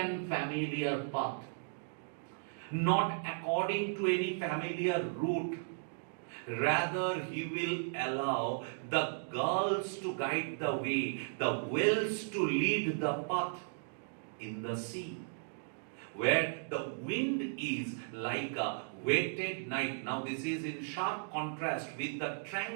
familiar path. Not according to any familiar route. Rather, he will allow the girls to guide the way, the whales to lead the path in the sea, where the wind is like a wetted night. Now, this is in sharp contrast with the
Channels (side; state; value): left; silent; digital silence